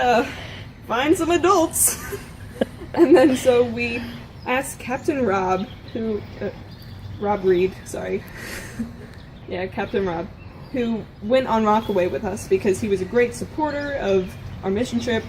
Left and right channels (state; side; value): identical; both; correlation 1.00